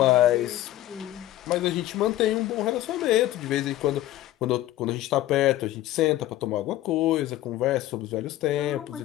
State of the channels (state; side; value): quieter; right; 14.7 dB